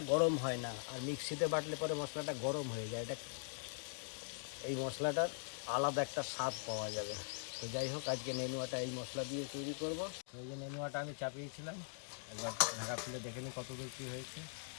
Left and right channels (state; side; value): silent; right; digital silence